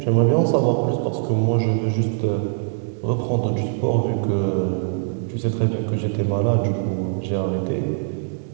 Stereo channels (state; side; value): silent; left; digital silence